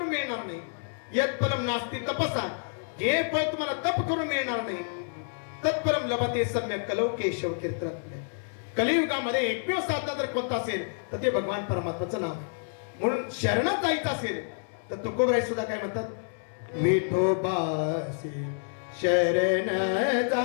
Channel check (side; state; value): right; silent; 59 dB below the other